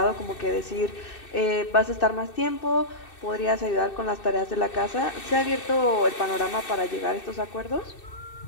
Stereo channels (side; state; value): right; late; 2.6 ms